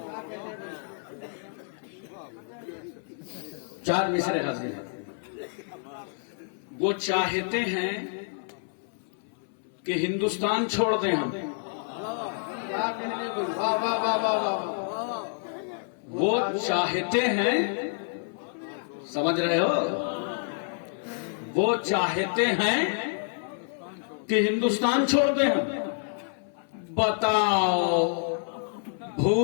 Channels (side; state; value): right; silent; 59 dB below the other